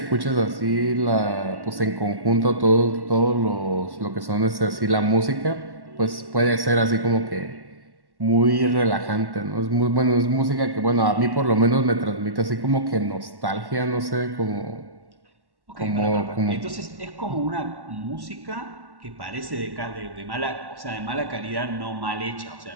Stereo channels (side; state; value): left; late; 1.1 ms